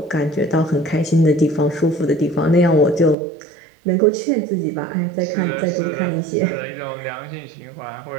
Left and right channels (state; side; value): drops out; left; at 3.2 s